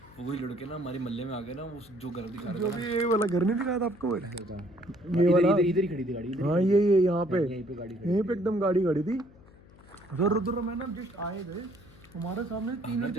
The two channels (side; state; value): left; noise; hum, 24 dB below the sound